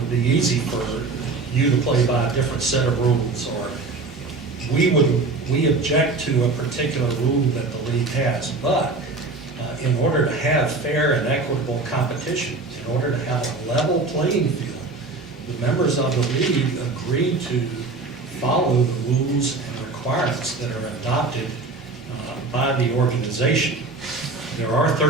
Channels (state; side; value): quieter; left; 3.6 dB